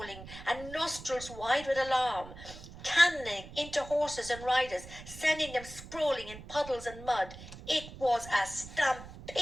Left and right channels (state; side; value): noise; right; rumble, 15 dB below the sound